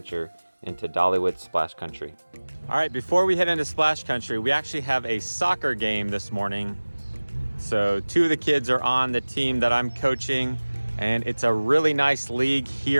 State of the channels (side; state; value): both; inverted; correlation -1.00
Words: into Dollywood Splash Country. All right, before we head into Splash Country, we actually have a soccer game this morning. So two of the kids are on the team that I'm coaching, and it's a really nice league